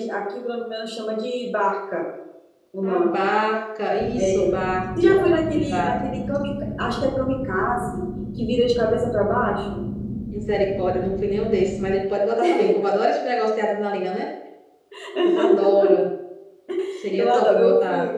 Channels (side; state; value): both; identical; correlation 1.00